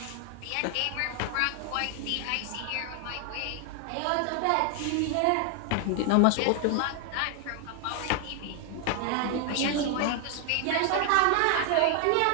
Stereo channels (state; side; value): different; both; correlation 0.00